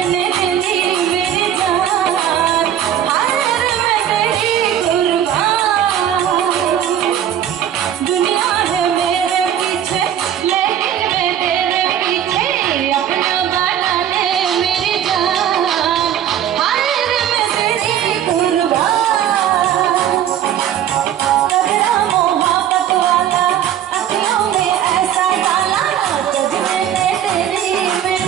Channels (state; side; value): quieter; left; 10.3 dB